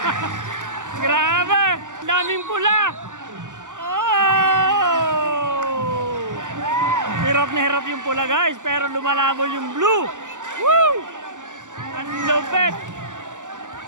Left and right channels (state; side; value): late; left; 0.87 ms